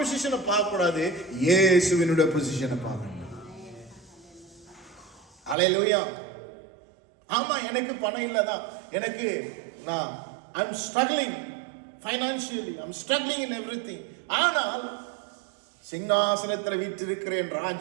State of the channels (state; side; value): drops out; left; at 5.6 s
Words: பார்க்க கூடாது, இயேசுவினுடைய பொசிஷனை பார்க்கணும். அல்லேலூயா. ஆமா, எனக்கு பணம் இல்லதான், எனக்கு I'm struggling financially, I'm struggling in everything. ஆனால் சிங்காசனத்தில் வீற்றிருக்கிறேன்